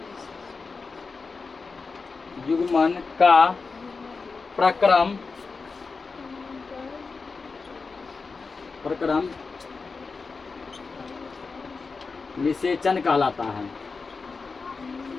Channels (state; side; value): quieter; right; 4.5 dB